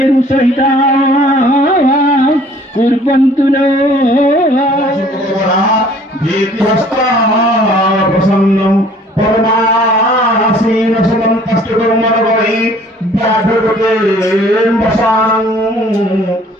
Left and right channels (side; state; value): both; normal; correlation 0.55